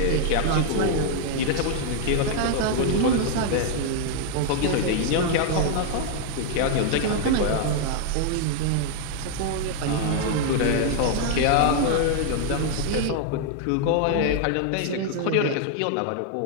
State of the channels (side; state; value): both; different; correlation 0.00